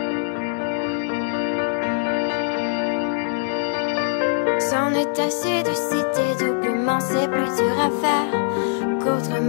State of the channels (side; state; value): right; silent; digital silence